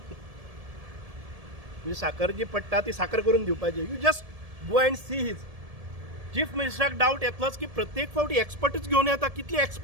म्हणजे साखर जी पडटा ती साखर करून दिवपाची. You just go and see his. Chief मिनिस्टराक डावट येतलोच की प्रत्येक फावटी एक्सपर्टूच घेवन येता. कितले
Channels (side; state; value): left; late; 1.7 ms